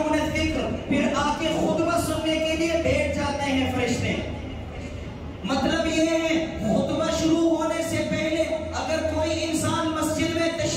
الذِّكْرَ، پھر آ کے خطبہ سننے کے لیے بیٹھ جاتے ہیں فرشتے. مطلب یہ ہے خطبہ شروع ہونے سے پہلے اگر کوئی انسان مسجد میں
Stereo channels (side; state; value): both; identical; correlation 1.00